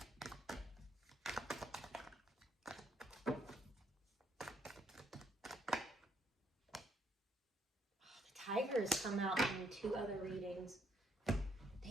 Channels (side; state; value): both; normal; correlation 0.70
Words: Tigers come out in 2 other readings.